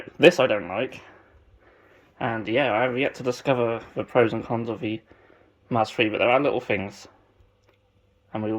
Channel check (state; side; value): identical; both; correlation 1.00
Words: this I don't like. And yeah, I have yet to discover the pros and cons of the Mars 3, but there are little things, and we